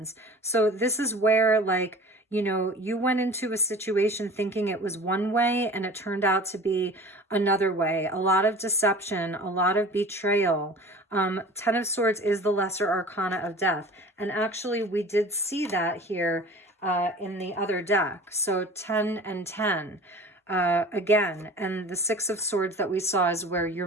So this is where, like, you know, you went into a situation thinking it was one way and it turned out to be another way. A lot of deception, a lot of betrayal. 10 of Swords is the lesser arcana of Death. And actually, we did see that here in the other deck. So 10 and 10 again, and the 6 of Swords that we saw is where you're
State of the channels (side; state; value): both; normal; correlation 0.41